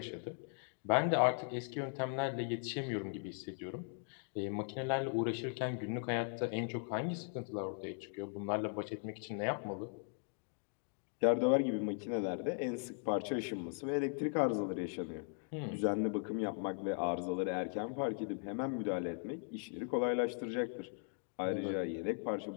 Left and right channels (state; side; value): silent; right; 52 dB below the other